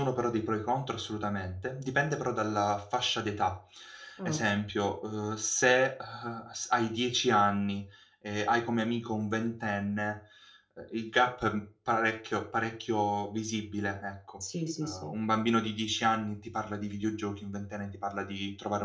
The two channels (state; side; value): identical; both; correlation 1.00